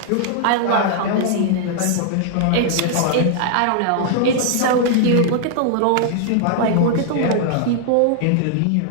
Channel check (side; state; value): both; different; correlation -0.01